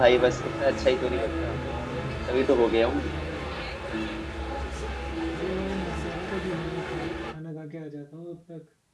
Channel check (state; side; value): identical; both; correlation 1.00